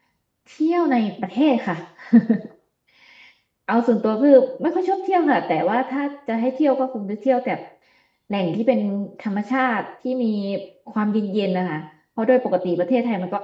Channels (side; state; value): both; identical; correlation 1.00